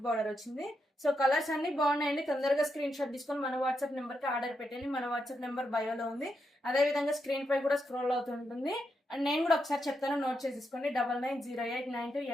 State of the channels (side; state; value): both; normal; correlation 0.83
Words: బార్డర్ వచ్చింది. సో కలర్స్ అన్ని బాగున్నాయండి. తొందరగా స్క్రీన్ షాట్ తీసుకొని మన వాట్సాప్ నెంబర్ కి ఆర్డర్ పెట్టండి. మన వాట్సాప్ నెంబర్ బయోలో ఉంది, అదే విధంగా స్క్రీన్ పై కూడా స్క్రోల్ అవుతుంటుంది. అండ్ నేను కూడా ఒకసారి చెప్తాను, నోట్ చేసేసుకోండి.